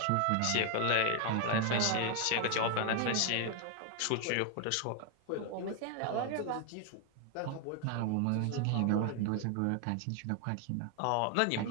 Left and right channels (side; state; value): both; different; correlation 0.01